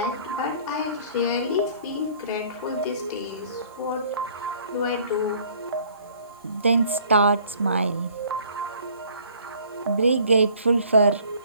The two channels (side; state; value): both; inverted; correlation -0.55